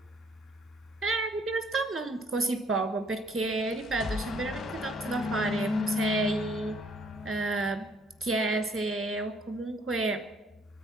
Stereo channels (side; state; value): both; normal; correlation 0.63